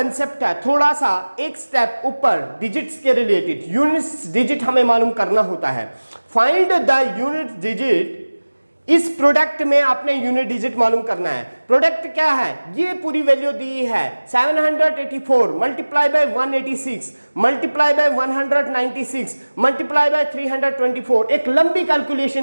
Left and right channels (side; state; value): both; inverted; correlation -1.00